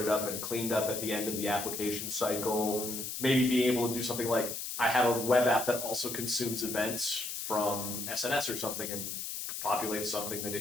up and cleaned up at the end of the application cycle. Maybe being able to do something like I have a web app that also consumes events from SNS or something and populates something that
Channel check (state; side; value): noise; left; hiss, 5 dB below the sound